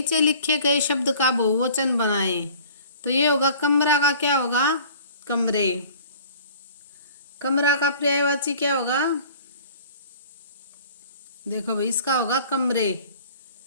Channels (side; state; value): both; inverted; correlation -0.48